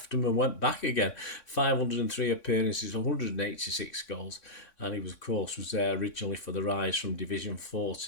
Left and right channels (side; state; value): right; late; 3.6 ms